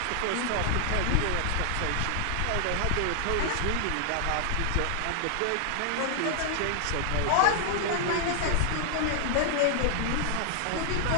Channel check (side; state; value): both; different; correlation -0.01